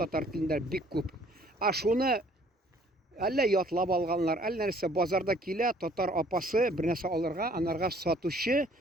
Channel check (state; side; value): normal; both; correlation 0.58